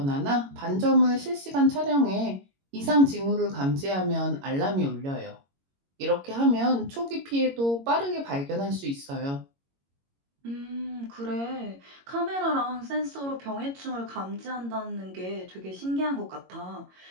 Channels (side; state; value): left; late; 22 ms